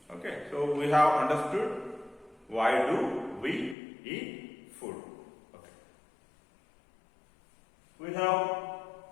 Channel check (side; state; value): right; drops out; at 3.8 s